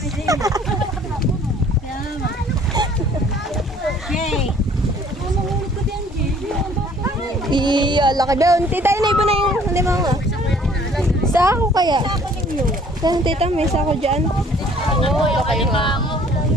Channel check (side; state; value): both; normal; correlation 0.56